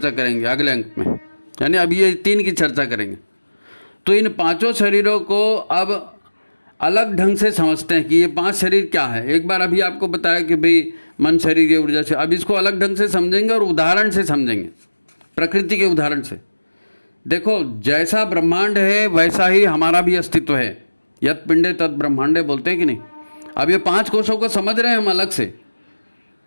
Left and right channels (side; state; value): both; inverted; correlation -1.00